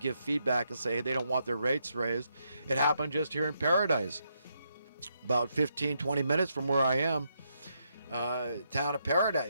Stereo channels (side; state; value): both; inverted; correlation -0.79